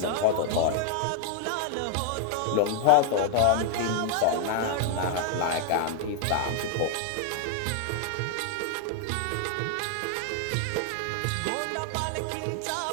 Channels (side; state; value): both; different; correlation 0.00